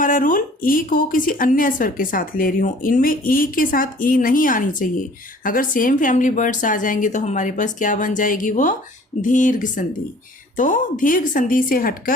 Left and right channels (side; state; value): both; normal; correlation 0.52